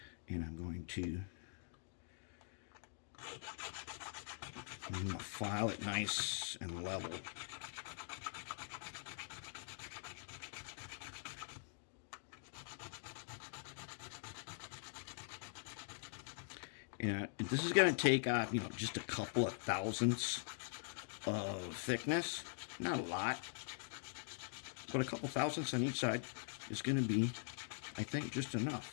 And I'm going to file it nice and level. And this is going to take off, just a couple of thousandths of thickness. Not a lot, but a couple thousandths on each side is going to be, I think, just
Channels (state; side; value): silent; right; digital silence